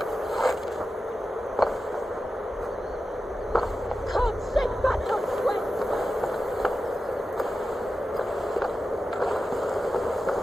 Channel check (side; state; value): both; normal; correlation 0.92